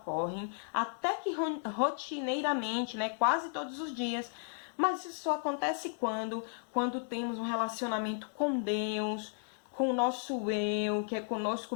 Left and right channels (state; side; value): silent; right; digital silence